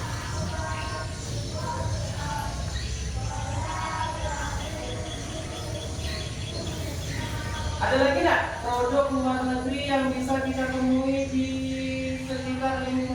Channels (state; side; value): identical; both; correlation 1.00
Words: Ada lagi nggak produk luar negeri yang bisa kita temui di sekitar